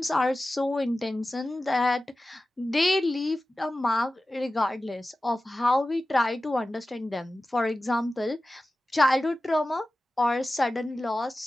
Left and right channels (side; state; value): both; normal; correlation 0.95